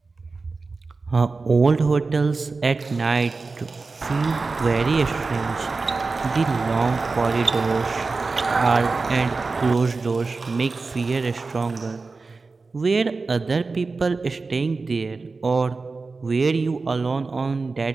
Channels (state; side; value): quieter; left; 4.0 dB